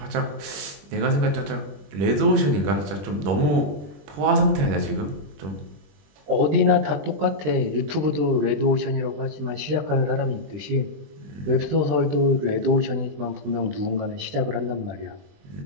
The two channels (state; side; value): late; left; 20 ms